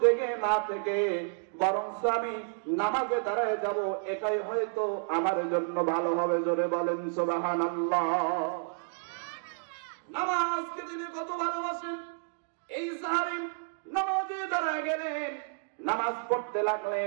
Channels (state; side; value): silent; left; digital silence